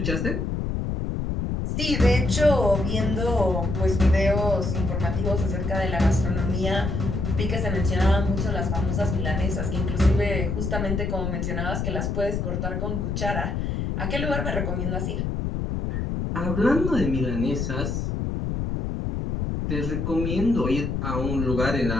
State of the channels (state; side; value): noise; left; rumble, 1 dB below the sound